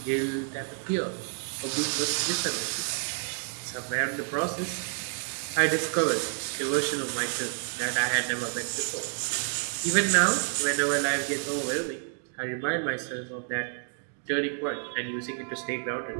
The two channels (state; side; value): silent; left; 58 dB below the other